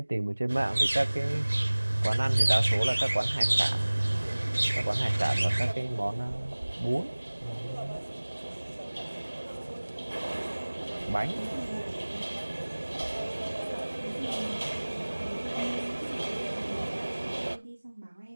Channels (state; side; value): inverted; both; correlation -1.00